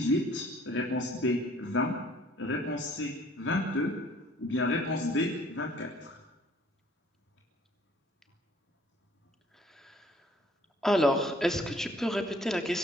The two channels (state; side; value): normal; both; correlation 0.57